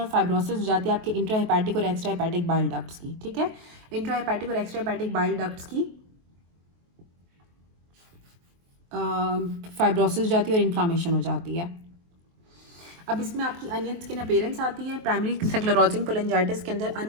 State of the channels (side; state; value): left; late; 23 ms